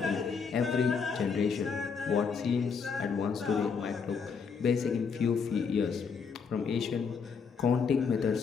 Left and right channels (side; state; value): right; quieter; 5.8 dB